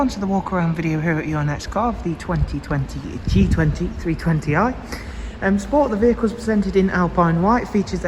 to the walk around video here at your next car of the 2020 G20 320i. M Sport, the vehicle is presented in Alpine white, features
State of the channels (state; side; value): identical; both; correlation 1.00